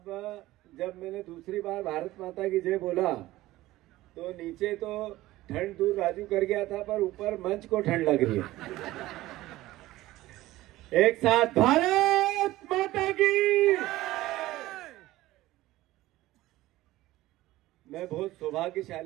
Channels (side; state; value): left; quieter; 16.9 dB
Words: जब मैंने दूसरी बार भारत माता की जय बोला तो नीचे तो ठंड दूर राजू कर गया था, पर ऊपर मंच को ठंड लग रही है। एक साथ भारत माता की। मैं बहुत